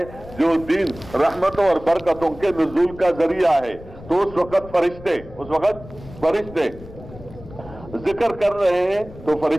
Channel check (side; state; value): left; noise; rumble, 17 dB below the sound